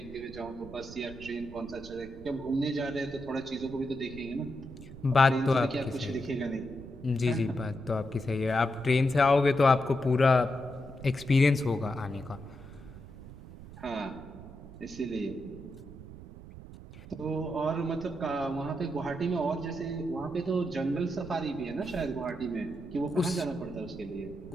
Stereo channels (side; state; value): right; noise; rumble, 15 dB below the sound